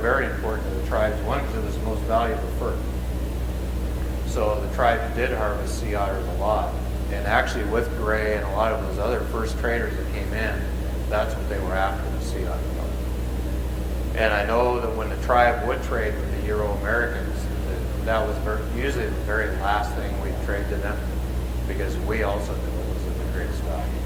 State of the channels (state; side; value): identical; both; correlation 1.00